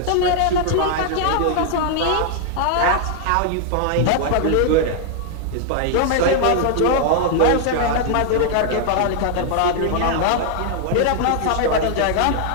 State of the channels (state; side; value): different; both; correlation 0.00